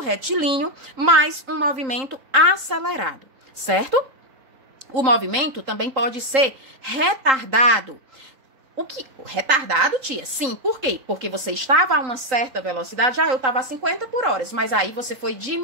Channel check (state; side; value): late; left; 3.8 ms